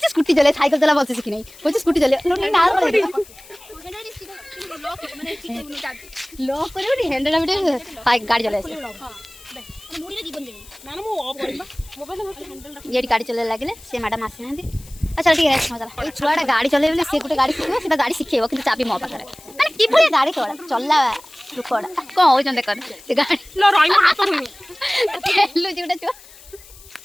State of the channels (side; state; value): left; noise; hiss, 21 dB below the sound